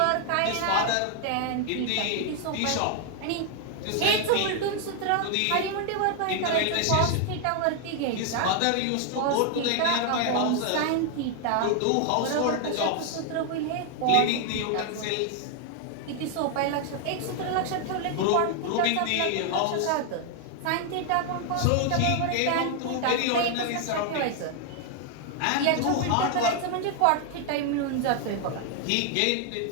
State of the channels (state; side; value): different; both; correlation 0.00